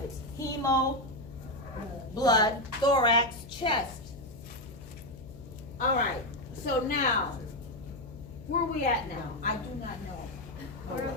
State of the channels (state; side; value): noise; left; hum, 17 dB below the sound